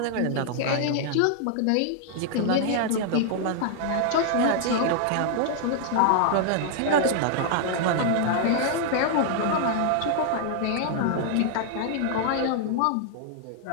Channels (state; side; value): different; both; correlation -0.01